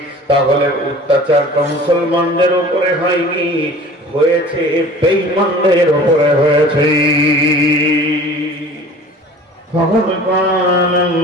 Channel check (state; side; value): normal; both; correlation 0.44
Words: তাহলে অত্যাচারটা মুসলমানদের উপরে হয়নি, হয়েছে বেঈমানদের উপরে হয়েছে। فقد قال